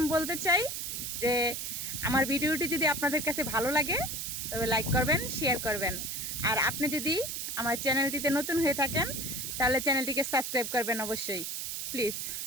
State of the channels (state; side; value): noise; right; hiss, 4 dB below the sound